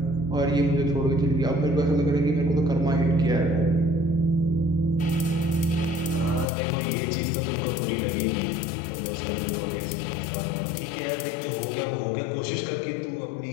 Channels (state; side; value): drops out; right; at 6.5 s